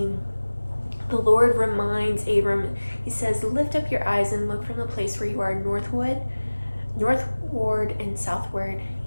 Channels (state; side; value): inverted; both; correlation -1.00